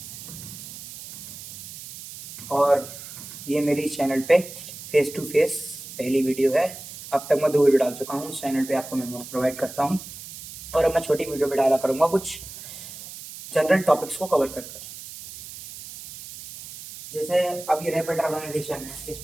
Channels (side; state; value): right; noise; hiss, 13 dB below the sound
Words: और ये मेरी चैनल पे फेस टू फेस पहली वीडियो है। अब तक मैं 2 वीडियो डाल चुका हूँ इस चैनल पे, आपको मैं नोट्स प्रोवाइड करता हूँ। और अब मैं छोटी वीडियो पे डाला करूँगा कुछ जनरल टॉपिक्स को कवर कर कर। जैसे अब ये रैपिड ऑर्गेनाइजेशन है, इस